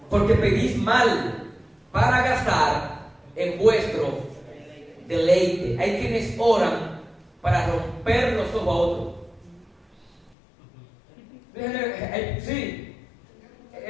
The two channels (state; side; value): drops out; right; at 10.4 s